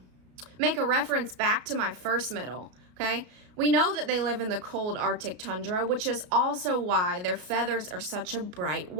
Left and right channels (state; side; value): late; left; 33 ms